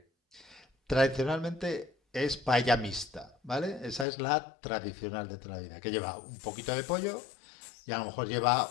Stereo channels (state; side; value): drops out; right; at 4.0 s